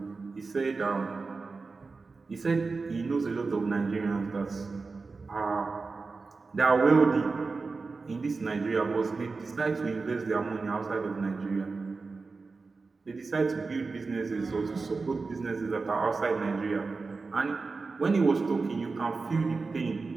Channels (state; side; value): quieter; left; 4.1 dB